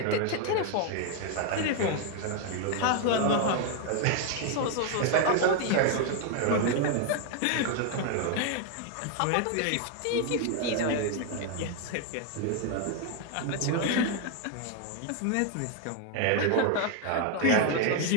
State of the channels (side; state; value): both; different; correlation 0.00